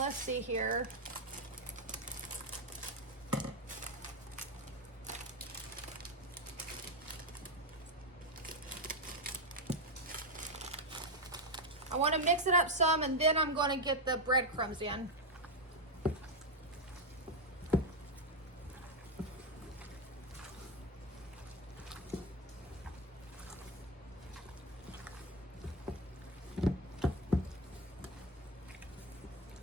see here. I want to mix it up some, and then I'm going to get the breadcrumbs in.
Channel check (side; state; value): both; normal; correlation 0.08